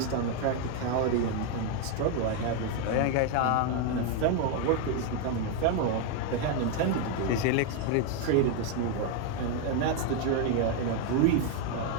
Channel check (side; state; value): both; different; correlation 0.01